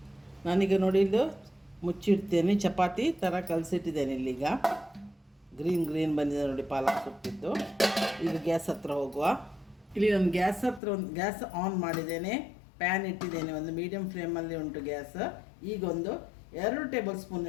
ನಾನೀಗ ನೋಡಿ ಇದು ಮುಚ್ಚಿಡ್ತೇನೆ. ಚಪಾತಿ ಥರ ಕಲಸಿಟ್ಟಿದ್ದೇನೆ. ಇಲ್ಲೀಗ ಗ್ರೀನ್ ಬಂದಿದೆ ನೋಡಿ ಪಾಲಕ್ ಸೊಪ್ಪಿದ್ದು. ಈಗ ಗ್ಯಾಸ್ ಹತ್ರ ಹೋಗುವ. ಇಲ್ಲಿ ನಾನು ಗ್ಯಾಸ್ ಆನ್ ಮಾಡಿದ್ದೇನೆ. ಪ್ಯಾನ್ ಇಟ್ಟಿದ್ದೇನೆ. ಒಂದು ಮೀಡಿಯಮ್ ಫ್ಲೇಮಲ್ಲಿ ಉಂಟು ಗ್ಯಾಸ್. ಈಗ ಒಂದು 2 ಟೇಬಲ್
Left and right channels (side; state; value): right; drops out; at 10.8 s